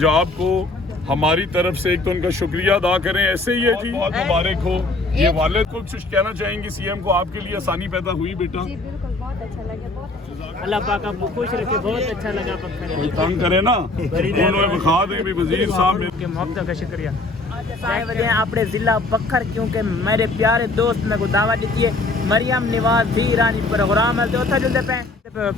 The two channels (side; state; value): right; quieter; 3.0 dB